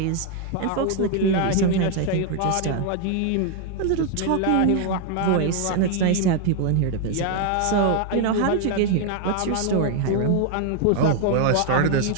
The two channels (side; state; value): both; different; correlation 0.00